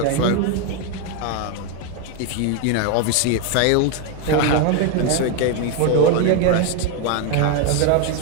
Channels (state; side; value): different; both; correlation 0.01